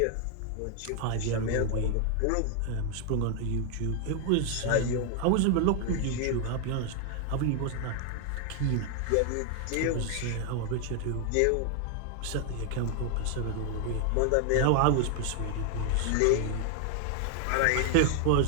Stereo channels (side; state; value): both; different; correlation 0.00